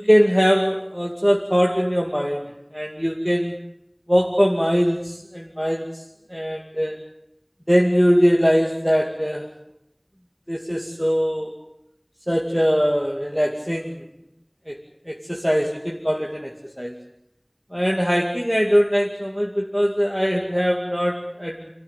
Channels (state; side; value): identical; both; correlation 1.00